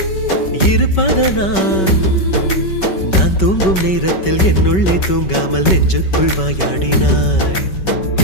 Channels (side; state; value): right; late; 5.3 ms